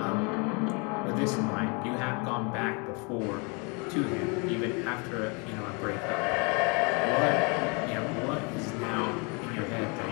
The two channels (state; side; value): quieter; right; 32.0 dB